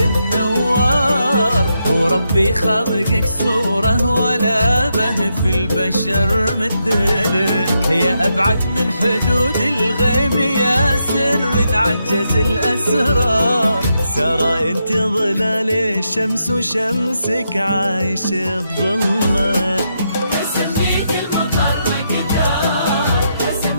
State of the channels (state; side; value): inverted; both; correlation -0.82